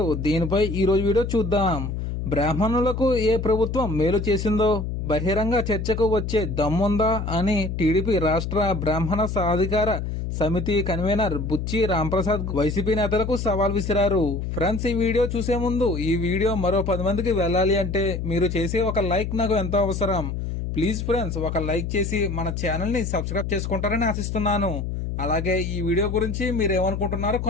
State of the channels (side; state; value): left; noise; hum, 4 dB below the sound